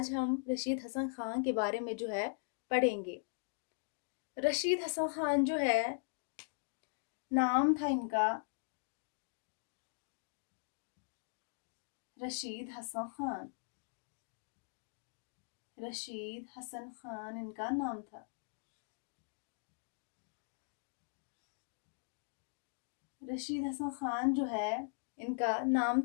ہم رشید حسن خان کے بارے میں جو ہے پڑھیں گے۔ رشید حسن خان جو ہے، نام تھا ان کا رشید حسن خان۔ رشید حسن خان ان کا نام تھا۔ رشید حسن خان جو ہے ان کا نام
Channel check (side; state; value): right; silent; digital silence